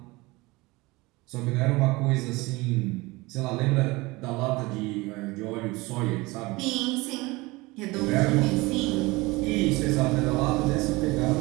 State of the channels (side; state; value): left; quieter; 22.5 dB